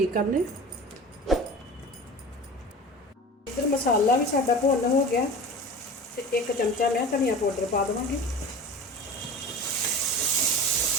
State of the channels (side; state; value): both; normal; correlation 0.36